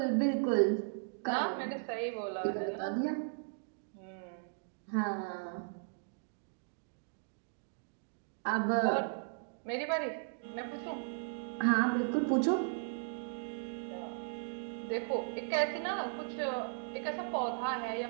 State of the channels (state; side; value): silent; left; digital silence